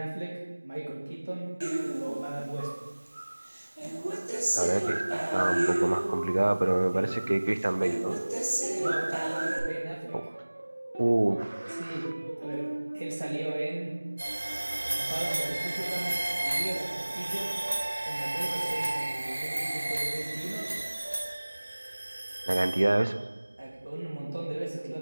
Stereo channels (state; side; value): inverted; both; correlation -1.00